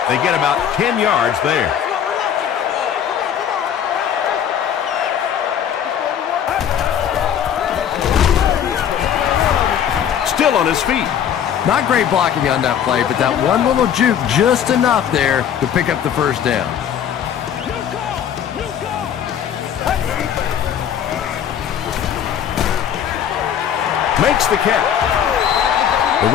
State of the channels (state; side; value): quieter; right; 9.0 dB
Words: They get about 10 yards there. Still on his feet. Not great blocking on that play, but that one little juke just enough there to pick up the first down. makes the catch. The